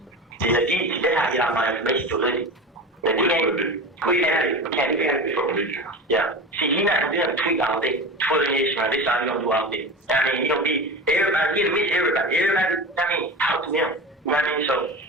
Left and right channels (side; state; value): both; normal; correlation 0.29